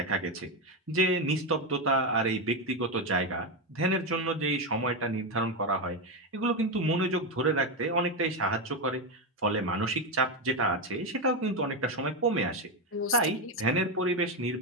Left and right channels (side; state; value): both; normal; correlation 0.10